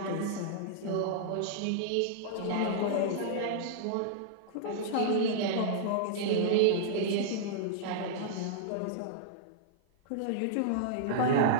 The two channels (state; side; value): different; both; correlation -0.02